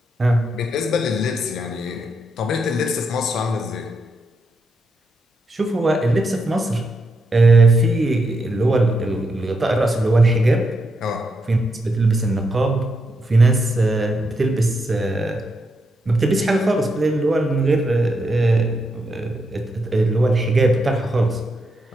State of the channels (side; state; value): both; normal; correlation 0.82